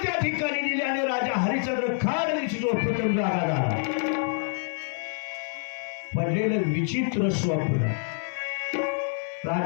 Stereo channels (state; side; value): silent; right; 60 dB below the other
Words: त्या ठिकाणी दिली आणि राजा हरिश्चंद्र खाड झोपेतून जागा झाला. पडलेलं विचित्र स्वप्न